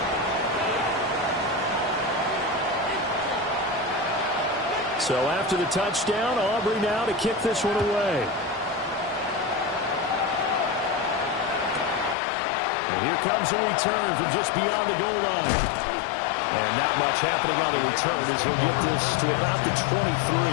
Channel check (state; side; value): drops out; right; at 12.2 s